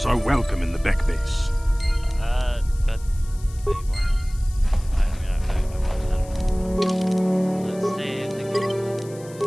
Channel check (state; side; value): noise; left; hiss, 22 dB below the sound